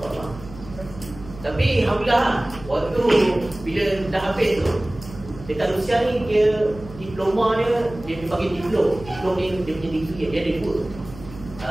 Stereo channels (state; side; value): noise; right; hum, 16 dB below the sound